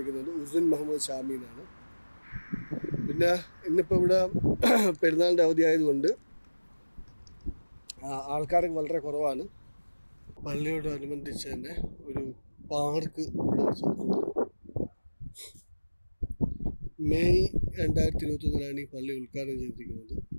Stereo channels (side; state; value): both; inverted; correlation -1.00